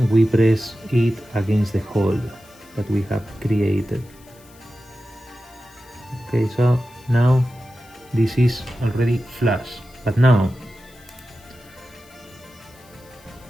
we press it against the hole that we have created. Okay, so now this is already flush, but now,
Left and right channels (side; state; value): left; noise; hiss, 26 dB below the sound